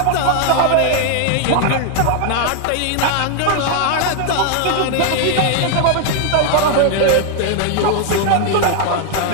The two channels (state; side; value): different; both; correlation 0.00